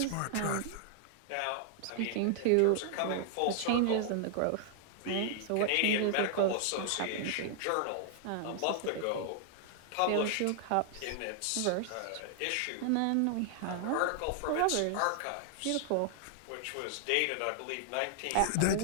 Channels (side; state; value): both; different; correlation -0.01